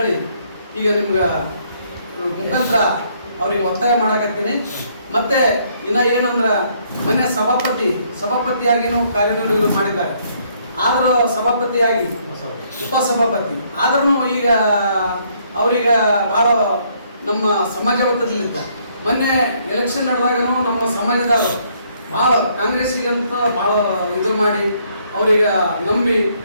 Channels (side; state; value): both; inverted; correlation -0.68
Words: ಈಗ ನಿಮ್ಗೆ ಮುಖಾಂತರ ಅವ್ರಿಗೆ ಒತ್ತಾಯ ಮಾಡಕತ್ತೀನಿ. ಮತ್ತೆ ಇನ್ನ ಏನಂದ್ರ, ಮೊನ್ನೆ ಸಭಾಪತಿಯಾಗಿನೂ ಕಾರ್ಯನಿರ್ವಹಣೆ ಮಾಡಿದ್ದಾರೆ. ಆದರೂ ಸಭಾಪತಿಯಾಗಿ ಉಪಸಭಾಪತಿ ಆದ್ರೂ ಈಗ ಅವ್ರೀಗ ಭಾಳ ನಮ್ಮ ಸಮಾಜ ಒತ್ತಡದಲ್ಲಿದ್ದ. ಮೊನ್ನೆ ಎಲೆಕ್ಷನ್ ನಡೆದಾಗನು ನಮ್ಮ ಸಮಾಜದವರು ಭಾಳ ಕಾಂಗ್ರೆಸ್ಸಿಗಂತ ಭಾಳ ಇದು ಮಾಡಿ ಅವ್ರಿಗೆ ನಂಬಿ